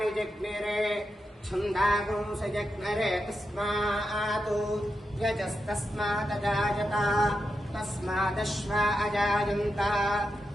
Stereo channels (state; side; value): normal; both; correlation 0.87